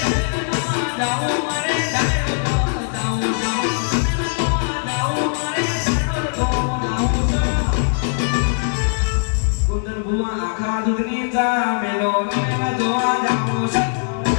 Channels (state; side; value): silent; right; digital silence